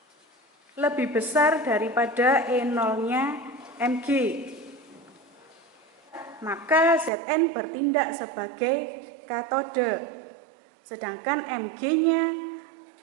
lebih besar daripada E0-nya Mg, maka Zn bertindak sebagai katoda, sedangkan Mg-nya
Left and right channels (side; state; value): left; drops out; at 7.1 s